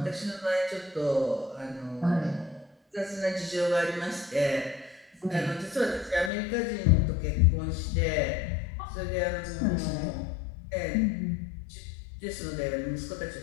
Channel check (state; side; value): drops out; right; at 6.3 s